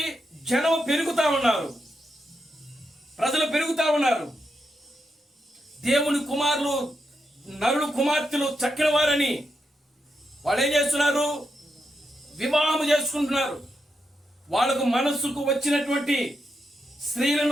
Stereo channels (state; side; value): normal; both; correlation 0.85